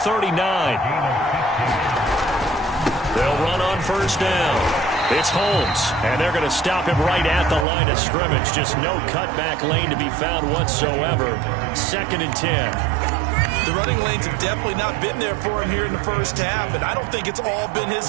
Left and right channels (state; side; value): drops out; left; at 7.7 s